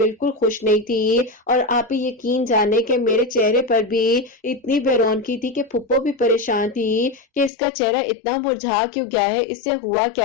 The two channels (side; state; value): right; drops out; at 7.5 s